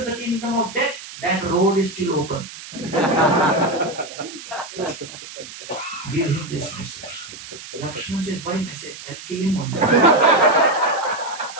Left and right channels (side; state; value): right; noise; hiss, 14 dB below the sound